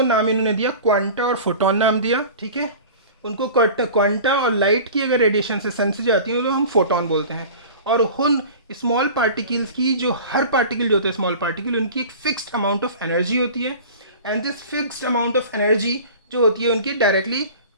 नाम इन्होंने दिया क्वांटा और फोटोन नाम दिया, ठीक है। उनको क्वांटा, और लाइट की अगर रेडिएशन से सन से जाती है तो हम फोटोन बोलते हैं। और उन स्मॉल पार्टिकल्स की, जो हर पार्टिकल जो होता है स्मॉल पार्टिकल, उनकी एक फिक्स्ड अमाउंट ऑफ एनर्जी होती है, and this fixed amount of energy जो होती है उनकी डायरेक्टली,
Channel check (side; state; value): both; inverted; correlation -0.38